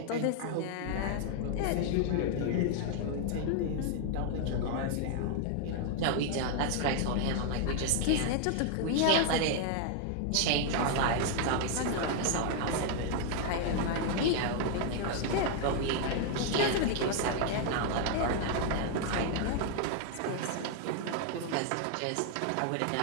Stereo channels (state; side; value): different; both; correlation 0.00